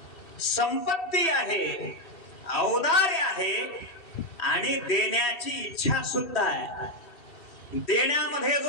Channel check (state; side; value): late; right; 2.7 ms